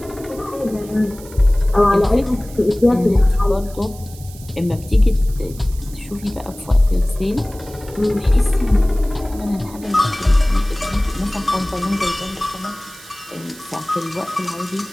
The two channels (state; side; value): noise; right; hiss, 19 dB below the sound